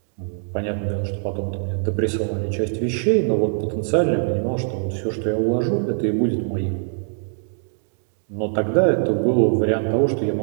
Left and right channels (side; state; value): left; silent; digital silence